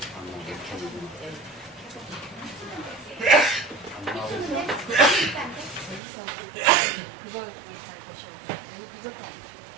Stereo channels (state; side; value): drops out; left; at 6.0 s